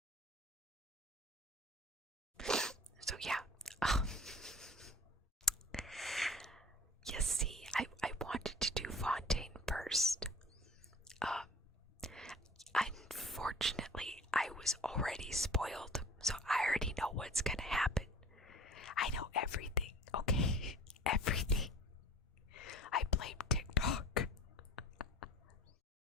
So yeah, you see, I wanted to do Fontaine first. Unfortunately, I was already spoiled, so I already know what's gonna happen. I know everything, okay? Everything. I blame TikTok.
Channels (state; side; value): normal; both; correlation 0.45